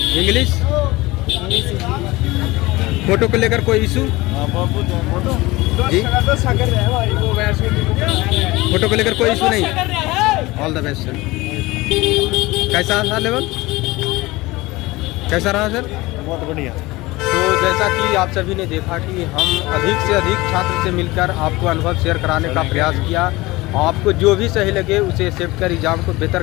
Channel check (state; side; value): quieter; right; 20.6 dB